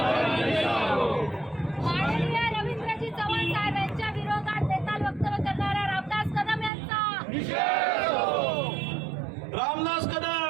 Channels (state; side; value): drops out; left; at 6.7 s